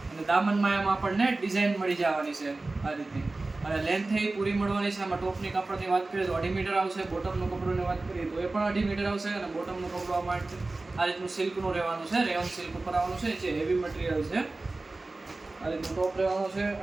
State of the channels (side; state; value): left; quieter; 3.2 dB